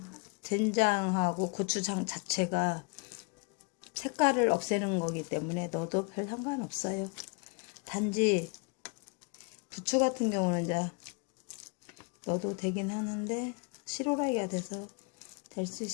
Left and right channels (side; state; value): right; quieter; 32.5 dB